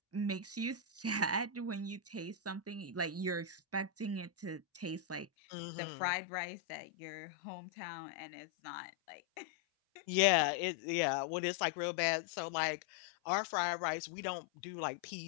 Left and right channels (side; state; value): right; drops out; at 5.2 s